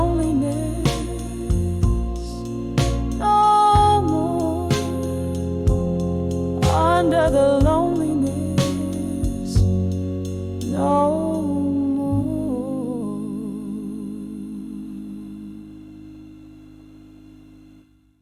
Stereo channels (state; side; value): identical; both; correlation 1.00